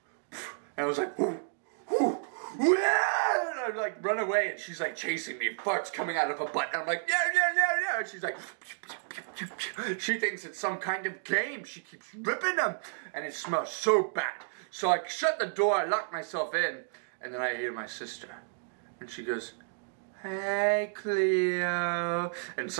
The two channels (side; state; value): left; silent; digital silence